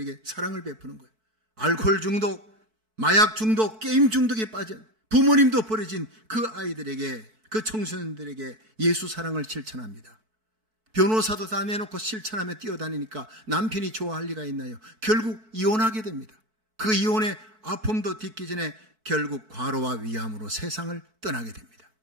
사랑을 베푸는 거예요. 알코올 중독, 마약 중독, 게임 중독에 빠진 부모님도 버려진 그 아이들에게, 그 청소년들에게 예수 사랑을 실천합니다. 변호사도 다 내놓고 실천하며 뛰어다니니까 남편이 좋아할 리가 있나요? 결국 이혼하게 됩니다. 그 이혼의 아픔도 딛기 전에 결국 과로와 위암으로 세상을 떠나게 됩니다.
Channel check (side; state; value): left; late; 4.6 ms